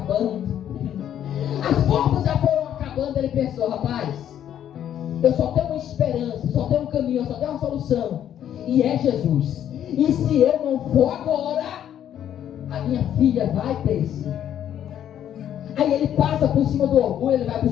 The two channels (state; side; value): quieter; right; 10.3 dB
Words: As forças já foram acabando. Ele pensou: rapaz, eu só tenho uma esperança, só tenho um caminho, só tenho uma solução. E é Jesus. E se eu não for agora, a minha filha vai perecer. Aí ele passa por cima do orgulho, ele vai